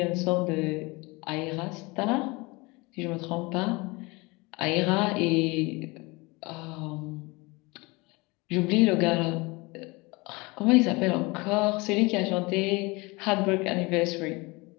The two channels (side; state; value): right; quieter; 25.1 dB